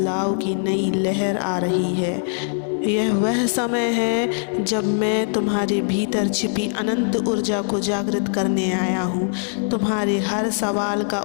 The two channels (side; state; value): right; silent; 64 dB below the other